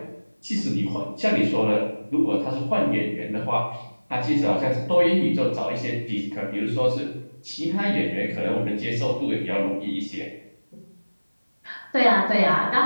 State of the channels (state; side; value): inverted; both; correlation -1.00